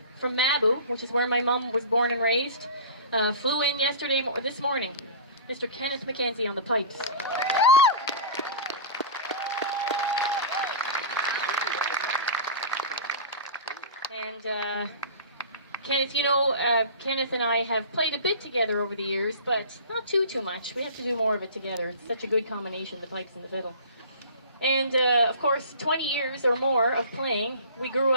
from Mabu, which is where my mum was born and raised. Flew in this morning. Mr. Kenneth McKenzie on the pipes. And Kenneth, Kenneth and I have played a bit together over the years, but not too much. We have to do more of it together. It's such a good combination, the pipes and the fiddle. And of course, 20 years or more of playing. We grew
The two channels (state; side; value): inverted; both; correlation -0.37